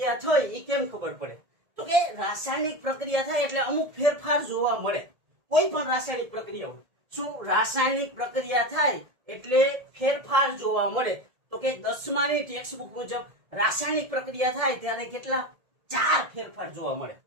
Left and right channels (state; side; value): late; left; 1.7 ms